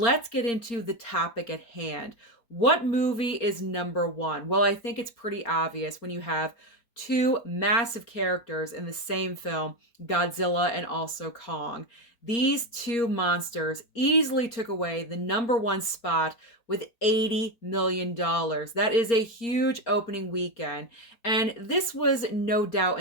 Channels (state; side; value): late; right; 4.3 ms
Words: get into the topic at hand. What movie is number one? Well, I think it's pretty obvious when you have two massive characters in the same film, Godzilla and also Kong. These two monsters easily took away the number one spot with $80 million. That is a huge opening weekend. And this was no doubt